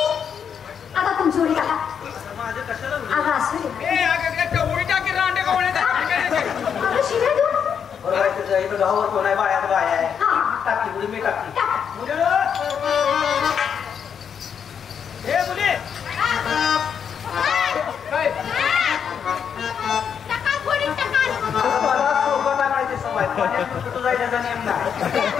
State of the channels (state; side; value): quieter; right; 7.5 dB